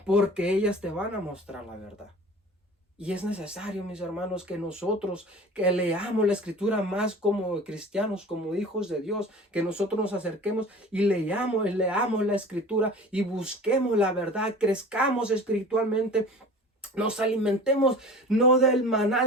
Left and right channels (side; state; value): both; normal; correlation 0.40